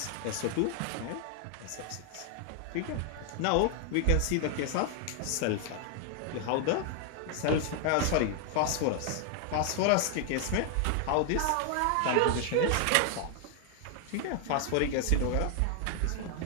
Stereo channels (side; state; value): both; different; correlation 0.00